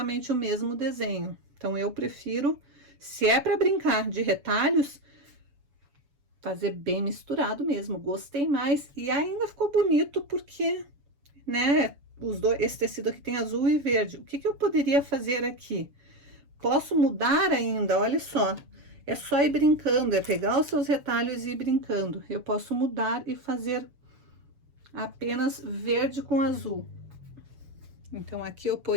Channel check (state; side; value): late; left; 7.0 ms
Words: o mesmo desenho. Então, eu prefiro, se é para brincar de retalhos, fazer bem misturado mesmo. Gostei mais e ainda ficou bonito porque, né, esse tecido aqui tem azul e verde. O que que eu poderia fazer aqui? Posso mudar ainda, olha só. É só ir brincando, é pegar os seus retalhos e ir brincando. Eu posso mudar e fazer apenas verde com azul. Então, aqui eu